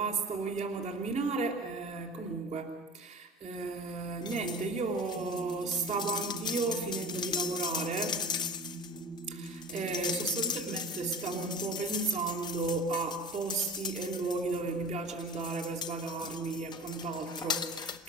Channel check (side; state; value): both; normal; correlation 0.37